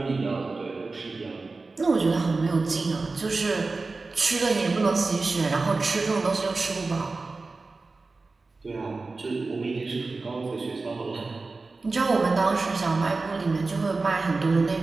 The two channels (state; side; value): quieter; left; 3.7 dB